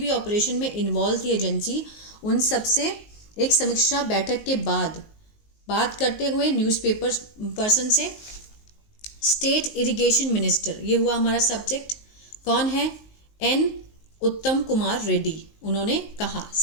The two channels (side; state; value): right; late; 19 ms